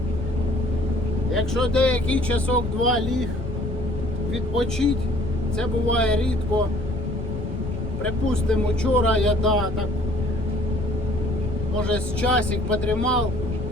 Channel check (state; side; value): normal; both; correlation 0.57